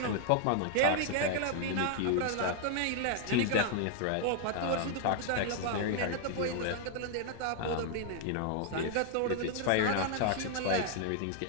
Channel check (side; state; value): both; different; correlation 0.00